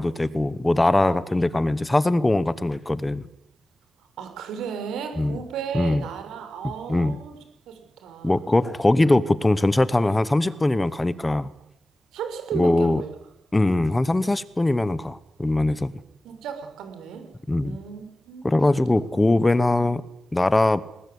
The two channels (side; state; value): both; normal; correlation 0.97